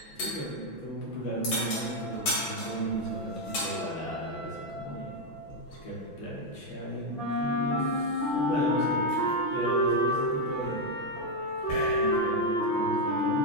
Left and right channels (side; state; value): right; late; 6.0 ms